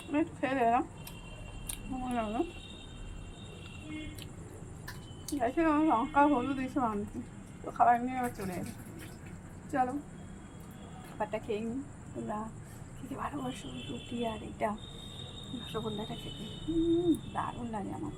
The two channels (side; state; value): both; identical; correlation 1.00